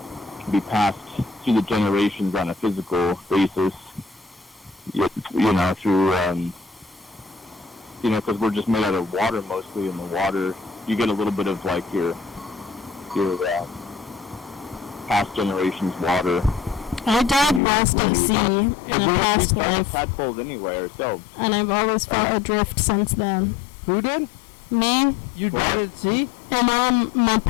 can be passed through the generations on a physical basis. You know, through, you know, because we're just made out of water mostly, and the water, you get a little bit of, like, your past generations' water. I died lost at sea in a past life, tadpoles anyway ourselves. and I've always felt adrift since then. Who did? Me? You died at sea? In all my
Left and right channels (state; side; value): drops out; right; at 17.6 s